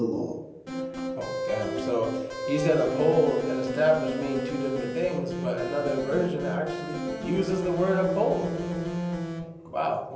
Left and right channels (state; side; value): identical; both; correlation 1.00